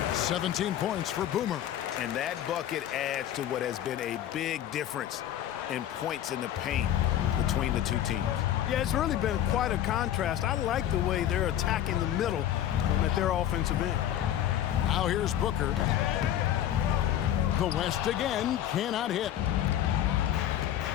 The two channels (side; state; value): right; quieter; 11.4 dB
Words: 17 points for Boomer. And that bucket adds to what has been a big difference in points in the paint between the two teams. Yeah, it's really been quite a contrast. I like the way they're attacking the middle at their offensive end. Now here's Booker. The West again cannot hit.